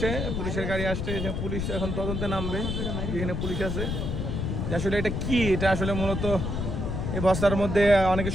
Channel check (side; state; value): left; noise; rumble, 2 dB below the sound